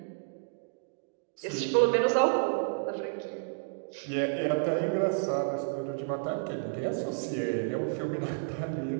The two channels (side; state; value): left; silent; digital silence